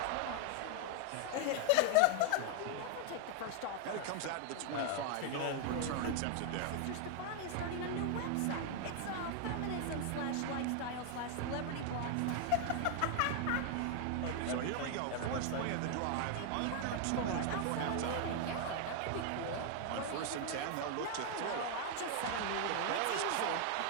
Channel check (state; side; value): different; both; correlation 0.00